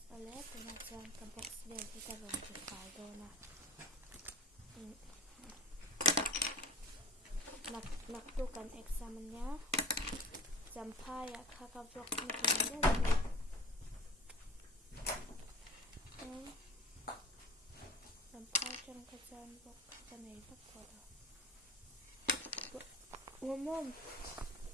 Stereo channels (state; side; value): normal; both; correlation 0.40